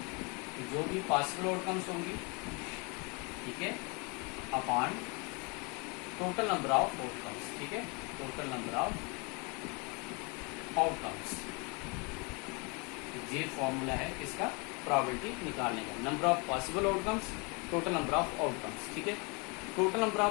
जो भी possible outcomes होंगी, ठीक है, upon total number of outcomes, ठीक है, टोटल नंबर ऑफ आउटकम्स। ये फॉर्मूला है इसका प्रोबेबिलिटी निकालने का, number of possible outcomes, total number of outcomes, ठीक है। टोटल नंबर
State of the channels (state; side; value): quieter; right; 31.1 dB